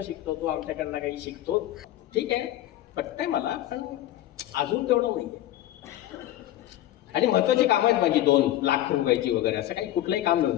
शिकतो, तो आमच्याकडनं काही शिकतो. ठीक आहे, पटतंय मला, पण अजून तेवढं नाहीये. आणि महत्वाची कामं आहेत माझी, 2 लाख रुपयाची वगैरे, असं काही कुठलंही काम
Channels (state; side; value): quieter; right; 13.8 dB